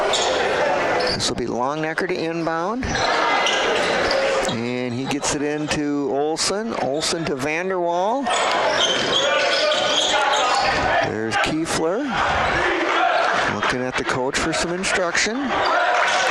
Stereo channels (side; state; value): both; identical; correlation 1.00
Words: This will be Longnecker to inbound. And he gets it into Olsen. Olsen to Vanderwall. There's Kiefler. Looking at the coach for some instruction.